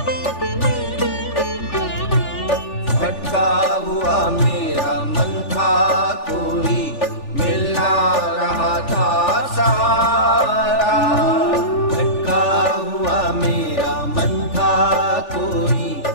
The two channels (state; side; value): late; right; 3.4 ms